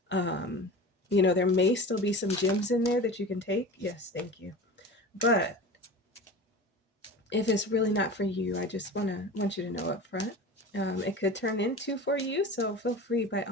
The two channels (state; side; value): normal; both; correlation 0.33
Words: There may still be some gems in there that you can take. Yes, thank you. But if it's really not for you, I just want you to know up front. It could turn into for you, so feel free, by